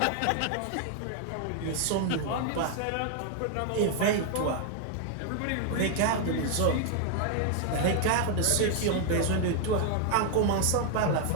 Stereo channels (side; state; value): both; different; correlation 0.00